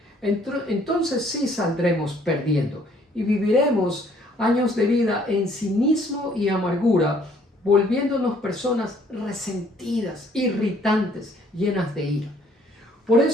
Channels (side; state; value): both; normal; correlation 0.62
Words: entonces sí saldremos perdiendo y viviremos años de vida en cinismo y amargura, volviéndonos personas resentidas, irritantes, llenas de ira. Por